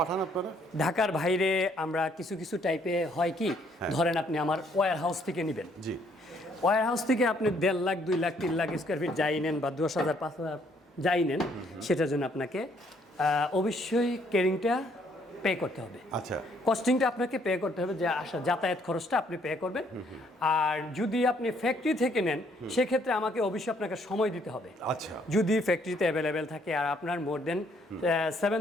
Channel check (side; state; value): both; normal; correlation 0.67